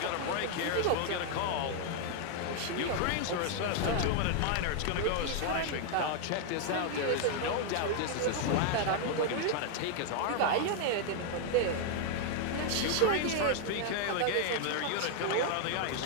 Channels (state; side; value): different; both; correlation 0.00